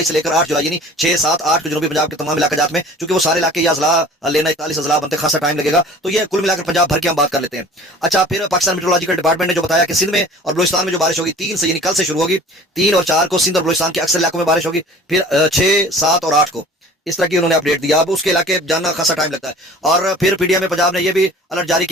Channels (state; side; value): normal; both; correlation 0.45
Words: से लेकर 8 जुलाई यानी 6, 7, 8 को जनूबी पंजाब के तमाम इलाके जात में, चूंकि वो सारे इलाके या अजला लेना 41 अजला बनते खासा टाइम लगेगा, तो ये कुल मिलाकर पंजाब भर की हम बात कर लेते हैं। अच्छा, फिर पाकिस्तान मेट्रोलॉजिकल डिपार्टमेंट ने जो बताया कि सिंध में और बलूचिस्तान में जो बारिश होगी 3 से यानी कल से शुरू होगी, 3 और 4 को सिंध और बलूचिस्तान के अक्सर इलाकों में बारिश होगी, फिर 6, 7 और 8 को इस तरह की उन्होंने अपडेट दिया। अब उसके इलाके जानना खासा टाइम लगता है। और फिर पीडीएम में पंजाब ने यह भी अलर्ट जारी